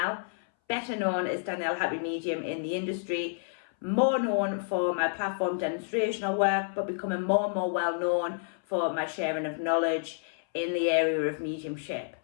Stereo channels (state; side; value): silent; right; 58 dB below the other